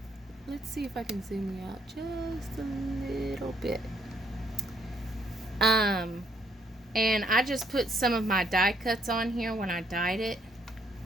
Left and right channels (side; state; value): both; normal; correlation 0.69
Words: Let's see if I can zoom you out just a little bit. And I just put some of my die cuts on here when I dyed it,